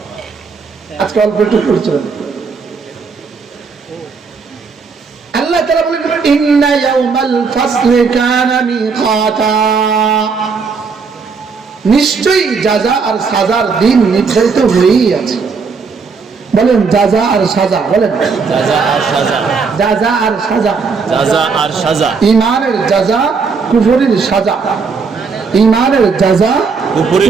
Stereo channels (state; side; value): quieter; left; 5.1 dB